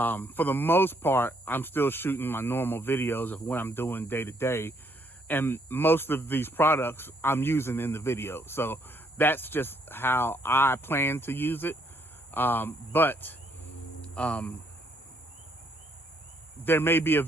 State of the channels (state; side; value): normal; both; correlation 0.69